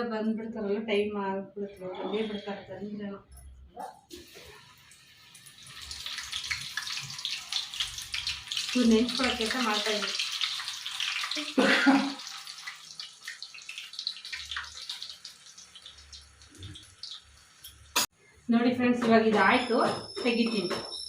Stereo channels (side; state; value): both; identical; correlation 1.00